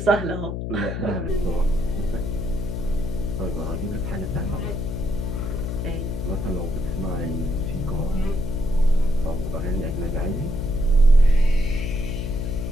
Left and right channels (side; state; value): left; noise; hum, 4 dB below the sound